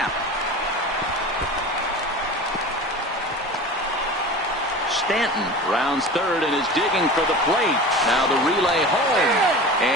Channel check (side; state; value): both; normal; correlation 0.34